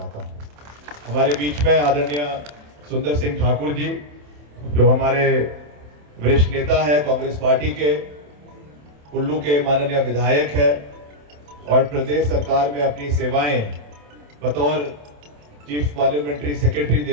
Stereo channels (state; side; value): late; left; 27 ms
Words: हूं। हमारे बीच में आदरणीय सुंदर सिंह ठाकुर जी, जो हमारे वरिष्ठ नेता है कांग्रेस पार्टी के, कुल्लू के माननीय विधायक है और प्रदेश सरकार में अपनी सेवाएं बतौर चीफ पार्लियामेंट्री सेक्रेटरी